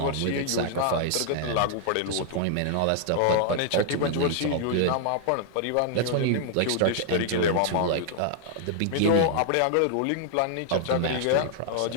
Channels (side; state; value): both; different; correlation 0.00